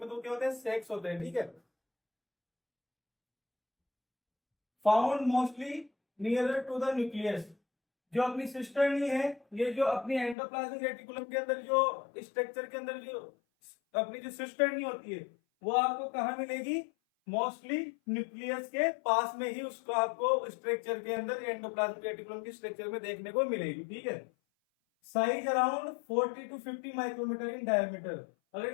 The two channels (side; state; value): right; drops out; at 10.4 s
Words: तो क्या होता है, सेक्स होते हैं। ठीक है, found mostly nearer to the nucleus. जो अपनी सिस्टर्नी है, ये जो अपनी एंडोप्लाज्मिक रेटिकुलम के अंदर जो स्ट्रक्चर के अंदर जो अपनी जो सिस्टर्नी होती है वो आपको कहाँ मिलेगी, मोस्टली न्यूक्लियस के पास में ही उसको आपको स्ट्रक्चर के अंदर एंडोप्लाज्मिक रेटिकुलम की स्ट्रक्चर में देखने को मिलेगी। ठीक है, size around 40 to 50 micrometre in diameter. अगर